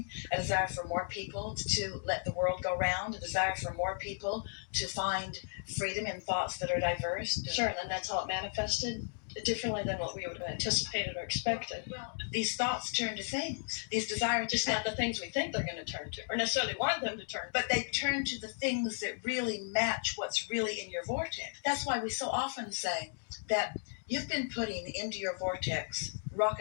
a desire for more people to let the world go round, a desire for more people to find freedom in thoughts that are diverse? Sure, and then that's how it manifested differently than what we would have anticipated or expected. Well, these thoughts turn to things. These desires, just not the things we think they're going to turn to, or necessarily want them to turn to. But they turn to the things that really match what's really in your vortex. That's why we so often say that you've been putting into your vortex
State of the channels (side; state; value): right; silent; digital silence